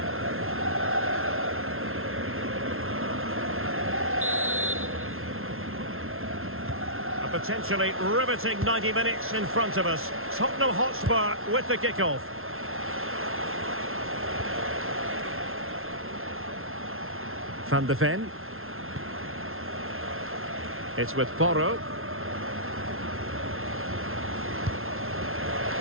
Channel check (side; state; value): left; late; 0.61 ms